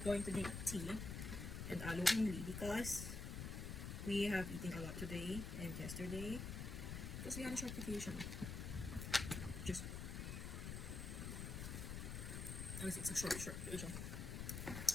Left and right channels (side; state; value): left; noise; rumble, 5 dB below the sound